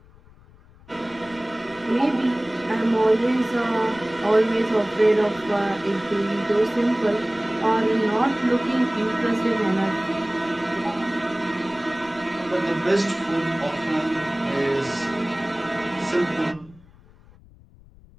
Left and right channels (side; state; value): left; noise; rumble, 25 dB below the sound